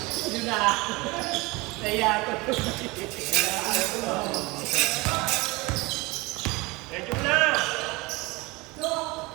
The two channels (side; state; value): left; quieter; 23.9 dB